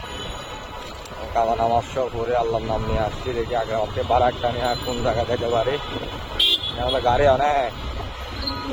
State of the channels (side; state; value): both; identical; correlation 1.00